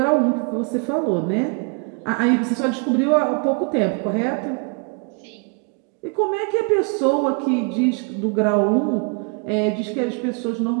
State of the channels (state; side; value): quieter; left; 35.4 dB